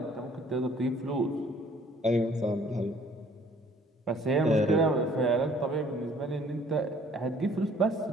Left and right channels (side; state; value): both; normal; correlation 0.57